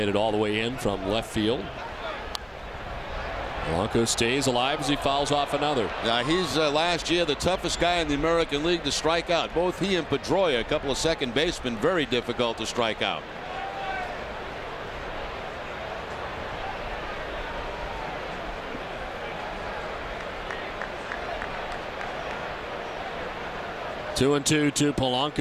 it all the way in from left field. Polanco stays alive as he fouls off another. Now he's last year the toughest guy in the American League to strike out. Both he and Pedroia, a couple of second basemen, very difficult to strike out. 2-2 to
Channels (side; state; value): both; identical; correlation 1.00